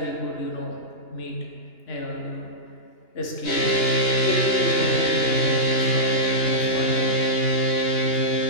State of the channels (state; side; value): late; right; 2.9 ms